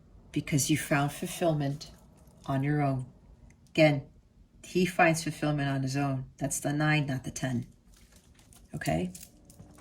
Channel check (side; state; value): both; identical; correlation 1.00